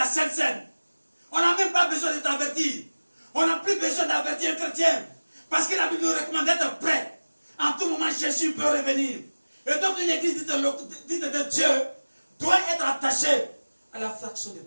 Sainte Seine. On n'a même pas besoin de t'avertir. On n'a plus besoin d'avertir un chrétien. Parce que la Bible nous recommande d'être prêt. En tout moment, Jésus peut revenir. Et donc, une église dite de Dieu doit être attachée à la fraction de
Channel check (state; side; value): inverted; both; correlation -1.00